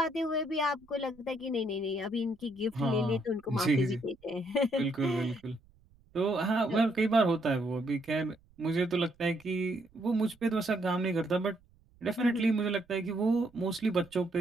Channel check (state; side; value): noise; right; rumble, 30 dB below the sound